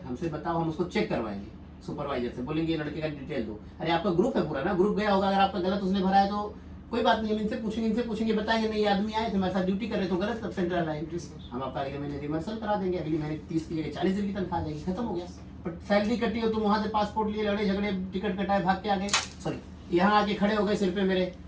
हमसे बताओ, हम उसको चेक करवाएंगे, सुपरवाइजर से बोलेंगे लड़के का डिटेल दो। अरे आपका ग्रुप है पूरा ना, ग्रुप गया होगा, अगर आपका गलत उसने भरा है तो कोई बात नहीं, हम इनसे पूछेंगे बताएंगे नहीं ये आदमी आए थे हमारे साथ ड्यूटी कर रहे तो गलत, तब सेंट्रल लाइन हम आपका अगले महीने रिवर्सल करा देंगे, अगले महीने 30 की जगह 40 दिन की तनख्वाह आ जाएगी, खत्म हो गया। बट सैलरी कटी हो, तुम वहां से पासपोर्ट लिए लड़े झगड़े, टिकट कटाए, भाग के आ गए, सॉरी यहाँ आके खड़े हो गए सिर पे मेरे,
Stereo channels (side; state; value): both; identical; correlation 1.00